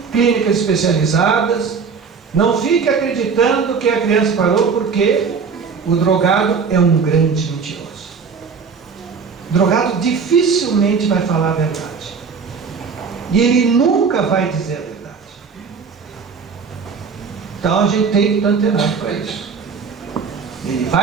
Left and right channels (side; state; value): left; quieter; 5.6 dB